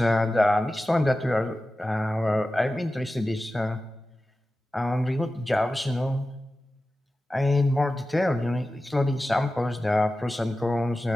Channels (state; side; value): normal; both; correlation 0.94